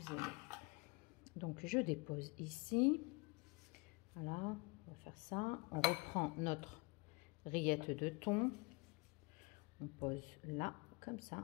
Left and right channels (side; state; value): right; quieter; 27.5 dB